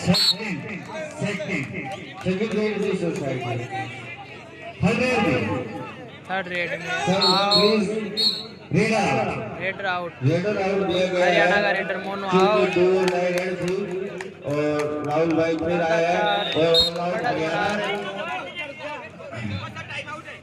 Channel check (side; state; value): both; identical; correlation 1.00